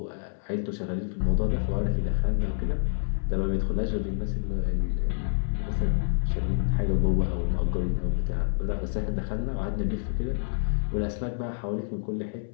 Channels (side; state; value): right; silent; 60 dB below the other